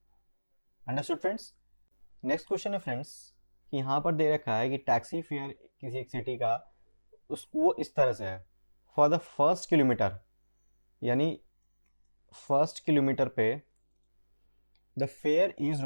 Understood friends. नेक्स्ट क्वेश्चन है फ्रेंड्स कि यहाँ पर दे रखा है कि टैक्सी फेयर किसी एक सिटी का वो इस तरह से है, फॉर द फर्स्ट किलोमीटर, यानी फर्स्ट किलोमीटर पे the fair is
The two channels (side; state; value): both; inverted; correlation -1.00